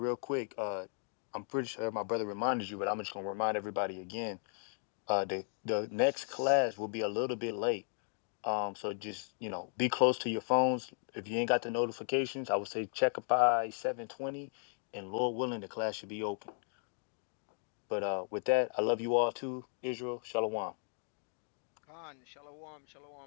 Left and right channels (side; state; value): right; silent; 54 dB below the other